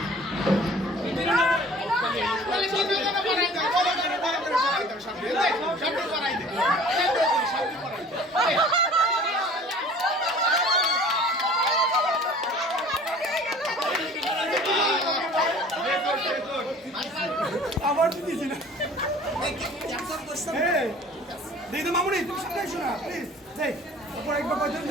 আবার দিয়েছি না দিদি তো মামুনি তুমি সামনে এসো না প্লিজ যাই উপর একবার কয়জন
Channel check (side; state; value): both; normal; correlation 0.47